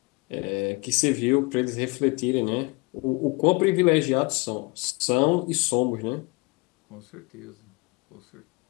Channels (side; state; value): right; quieter; 27.2 dB